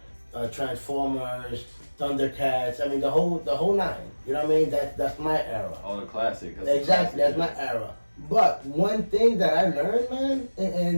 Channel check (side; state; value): both; inverted; correlation -1.00